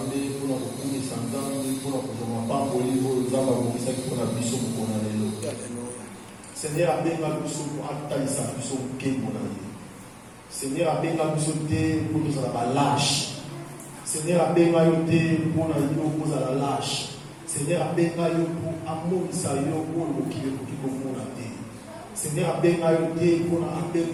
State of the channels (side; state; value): both; identical; correlation 1.00